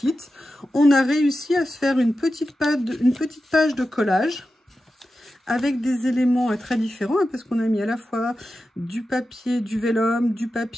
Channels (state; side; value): normal; both; correlation 0.92